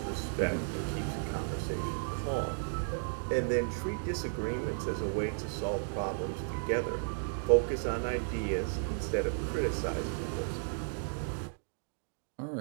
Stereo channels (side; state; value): left; silent; digital silence